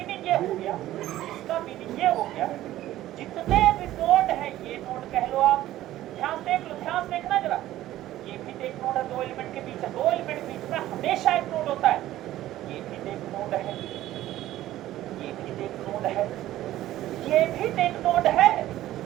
ये हो गया, इसका मीनिंग ये हो गया, जितने भी नोड है, ये नोड कह लो आप, ध्यान देख लो, ध्यान देखना जरा। ये भी एक नोड है, दो एलिमेंट के बीच है, दो एलिमेंट के बीच में हमेशा एक नोड होता है। ये भी एक नोड है, ये भी एक नोड है, ये भी एक नोड है।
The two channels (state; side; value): quieter; left; 14.3 dB